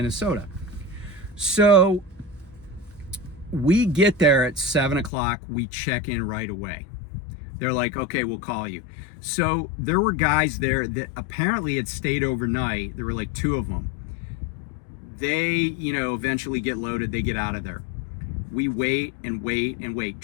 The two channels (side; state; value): right; drops out; at 5.1 s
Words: So we get there at 7 o'clock. We check in right away. They're like, "Okay, we'll call you." So there were guys there that apparently had stayed overnight. There were like 2 of them. They, eventually get loaded. They get out of there. We wait and wait and wait.